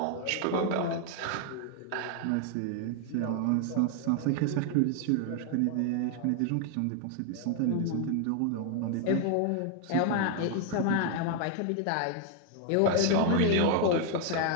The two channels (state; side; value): different; both; correlation 0.00